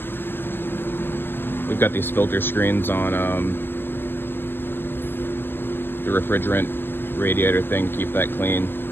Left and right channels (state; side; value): late; right; 0.099 ms